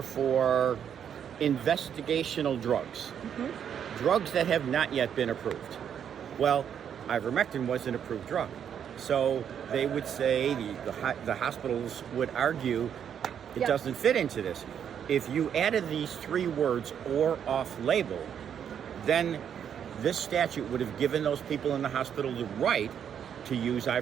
for investigational drugs, drugs that have not yet been approved. Well, ivermectin was an approved drug. So they would say, the hospitals would argue, it doesn't fit into this. If you added these three words, or off-label, then this statute would have given those people in the hospital the right to use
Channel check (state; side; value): quieter; left; 8.5 dB